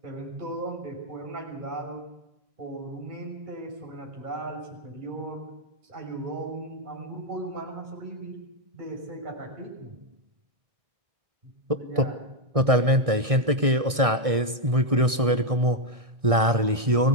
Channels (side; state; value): left; late; 1.6 ms